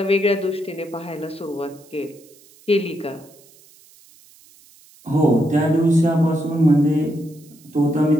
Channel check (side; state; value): right; noise; hiss, 27 dB below the sound